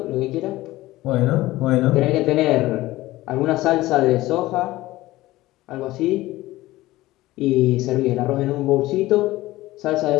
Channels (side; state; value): right; quieter; 17.6 dB